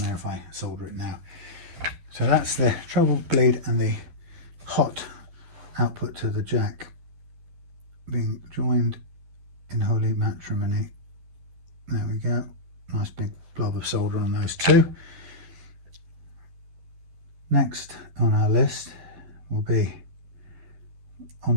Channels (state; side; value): late; left; 12 ms